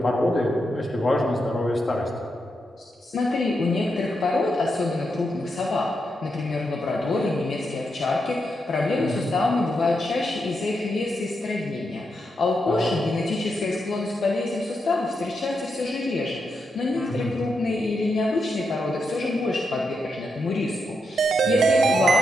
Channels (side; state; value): both; normal; correlation 0.84